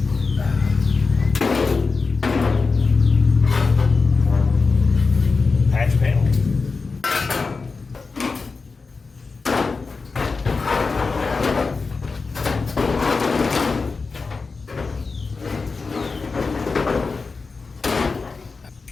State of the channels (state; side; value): quieter; right; 4.3 dB